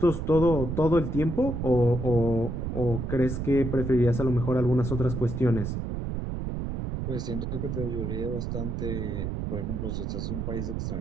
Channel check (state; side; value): noise; right; rumble, 3 dB below the sound